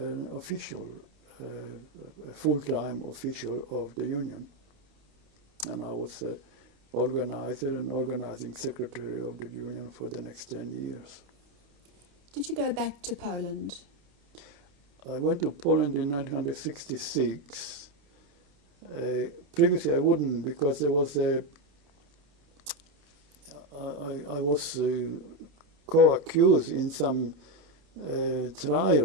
official, a full-time official of the union. And I was an organizer and organizing secretary of the union for the next 10 years. Did you go back to Poland? I went to Poland in 1966. Previously I wouldn't, because there was I was co-accused in some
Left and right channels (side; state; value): left; late; 29 ms